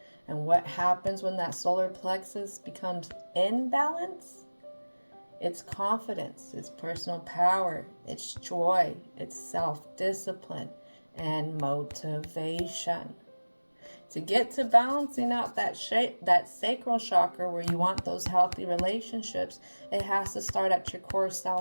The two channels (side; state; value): both; inverted; correlation -1.00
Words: And what happens when that solar plexus becomes in balance? It's confidence, it's personal power, it's joy, it's self-discipline, and motivation. To get to balancing out that sacral chakra where you want those healthy relationships, it has to start at your core